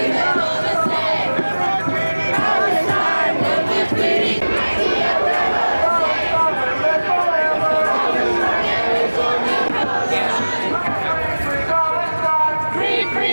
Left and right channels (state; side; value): inverted; both; correlation -1.00